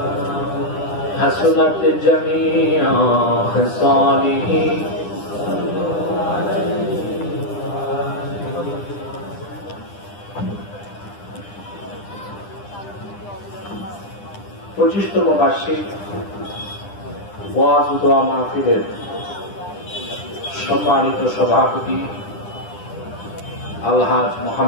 حسنت جميع خصاله পঁচিশতম বার্ষিক ওয়াজ ও দোয়া মাহফিলের সম্মানিত সভাপতি আলহাজ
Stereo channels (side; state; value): right; late; 9.9 ms